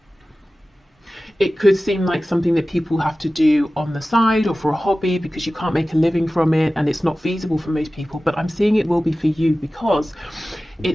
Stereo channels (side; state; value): both; normal; correlation 0.96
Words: It could seem like something that people have to do on the side or for a hobby, because you can't make a living from it and it's not feasible for most people. But I'm seeing it will be for you because